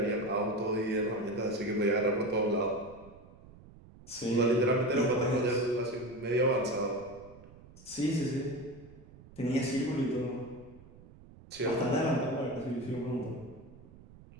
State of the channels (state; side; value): noise; right; rumble, 21 dB below the sound